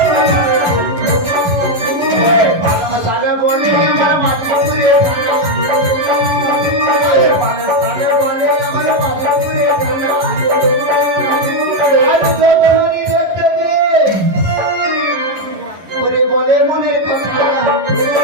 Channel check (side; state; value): left; late; 11 ms